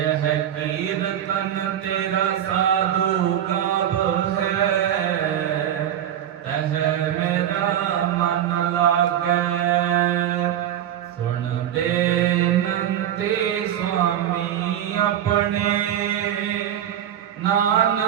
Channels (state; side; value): quieter; left; 10.6 dB